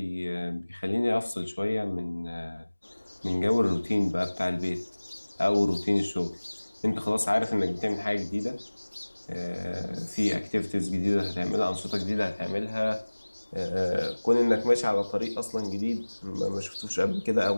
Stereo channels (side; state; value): both; inverted; correlation -1.00